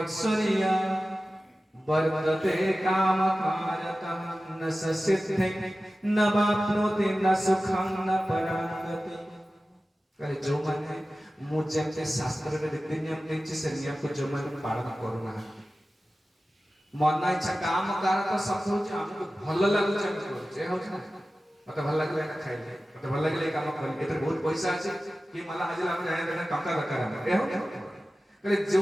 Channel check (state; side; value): normal; both; correlation 0.95